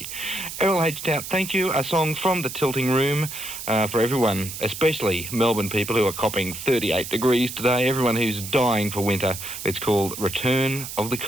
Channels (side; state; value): right; noise; hiss, 9 dB below the sound